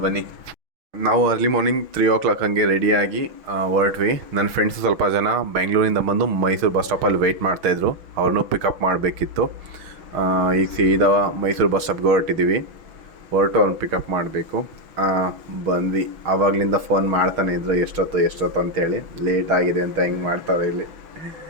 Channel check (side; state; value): left; late; 6.1 ms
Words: ಬನ್ನಿ. ನಾವು ಅರ್ಲಿ ಮಾರ್ನಿಂಗ್ 3 o'clock ಹಂಗೆ ರೆಡಿಯಾಗಿ ಹೊರಟ್ವಿ. ನನ್ನ ಫ್ರೆಂಡ್ಸು ಸ್ವಲ್ಪ ಜನ ಬೆಂಗಳೂರಿಂದ ಬಂದು ಮೈಸೂರು ಬಸ್ ಸ್ಟಾಪಲ್ಲಿ ವೆಯ್ಟ್ ಮಾಡ್ತಾಯಿದ್ರು. ಅವ್ರನ್ನೂ ಪಿಕಪ್ ಮಾಡಬೇಕಿತ್ತು. ಈಗ ಸೀದಾ ಮೈಸೂರು ಬಸ್ ಸ್ಟಾಪ್ಗೆ ಹೊರಟಿದ್ದೀವಿ. ಅವ್ರನ್ನ ಪಿಕಪ್ ಮಾಡಬೇಕು. ಬಂದ್ವಿ. ಆವಾಗಲಿಂದ ಫೋನ್ ಮಾಡ್ತಾನೆ ಇದ್ರು, ಎಷ್ಟೊತ್ತು ಅಂತೇಳಿ. ಲೇಟ್ ಆಗಿದೆ ಅಂತ ಹೆಂಗೆ ಮಾಡ್ತಾರೆ ಇಲ್ಲಿ.